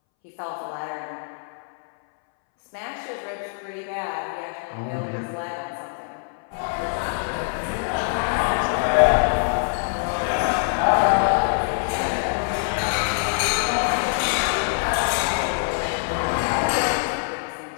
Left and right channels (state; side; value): silent; right; 63 dB below the other